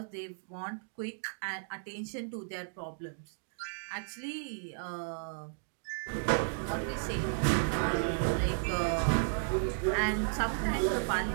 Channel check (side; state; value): left; silent; digital silence